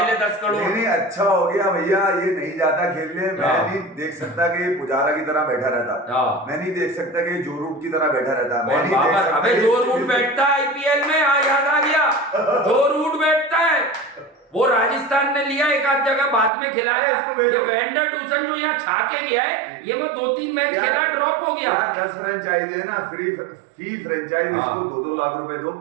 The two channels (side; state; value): left; drops out; at 16.5 s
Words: ले 10 करोड़। नहीं अच्छा हो गया भैया, ये नहीं जाता खेलने। मैं नहीं देख सकता कि पुजारा की तरह बैठा रहता, मैं नहीं देख सकता कि जो रूट की तरह बैठा रहता। मैं नहीं देख सकता। अबे जो रूट बैठता है आईपीएल में, याद आ गया, जो रूट बैठता है वो राजस्थान ने लिया, एक आध जगह बाद में खिलाया। ये वेंडर डूसन जो यहाँ छा के गया है, ये वो 2-3 मैच खेला, ड्रॉप हो गया। 10 फ्रेंचाइज है ना, फी फ्रेंचाइज, इसको 2-2 लाख रुपए दो,